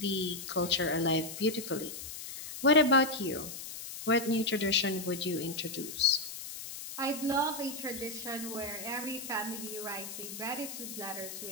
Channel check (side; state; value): left; noise; hiss, 9 dB below the sound